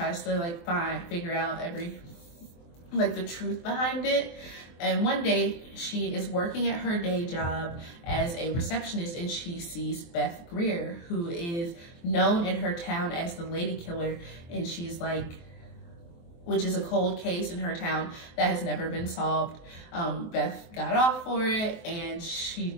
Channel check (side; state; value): right; late; 23 ms